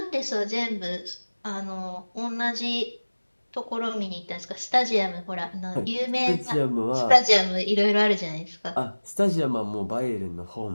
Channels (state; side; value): inverted; both; correlation -1.00